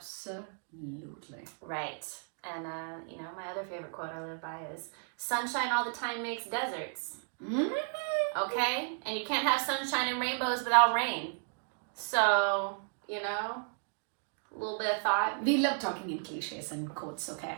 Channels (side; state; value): left; silent; 55 dB below the other